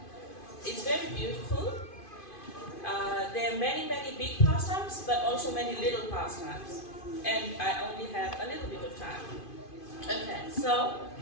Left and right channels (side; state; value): right; late; 2.5 ms